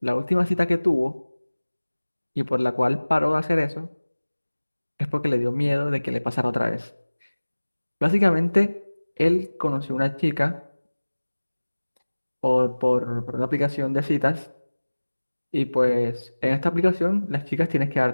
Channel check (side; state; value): both; inverted; correlation -1.00